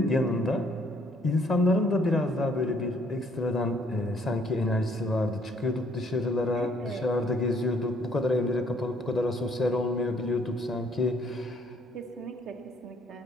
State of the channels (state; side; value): normal; both; correlation 0.65